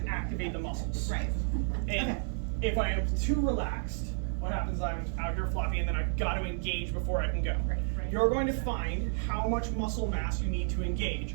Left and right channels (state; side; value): silent; left; digital silence